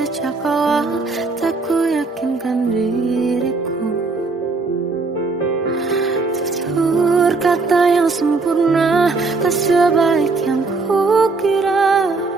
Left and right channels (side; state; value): left; quieter; 3.9 dB